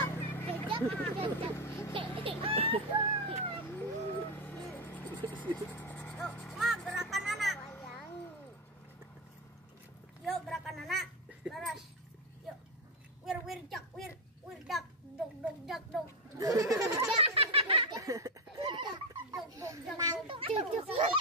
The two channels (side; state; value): both; normal; correlation 0.09